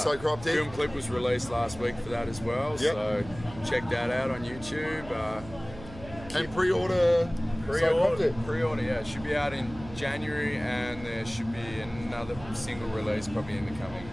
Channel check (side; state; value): right; noise; hum, 16 dB below the sound